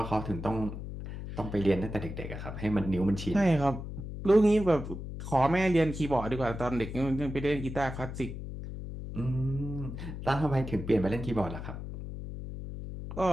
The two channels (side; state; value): left; noise; hum, 8 dB below the sound